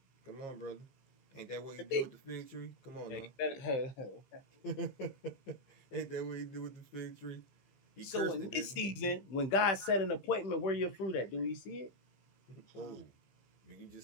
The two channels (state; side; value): late; right; 15 ms